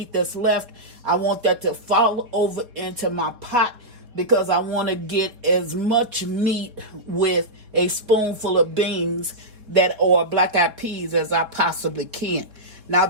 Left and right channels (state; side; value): late; left; 4.2 ms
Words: that's left. I want that to fall over into my pot because I want to get as much meat with a spoonful of beans or black-eyed peas as I possibly can. Now,